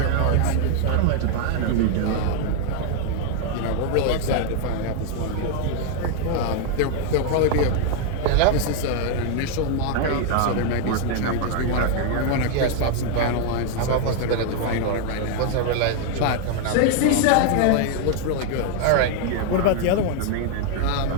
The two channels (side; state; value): both; different; correlation 0.00